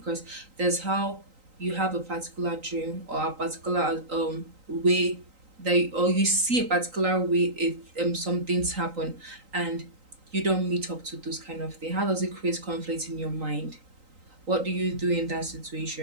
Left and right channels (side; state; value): left; late; 3.9 ms